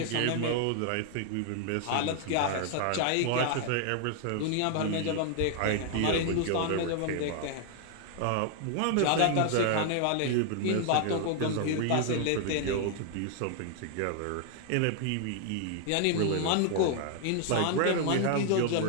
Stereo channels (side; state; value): both; different; correlation 0.00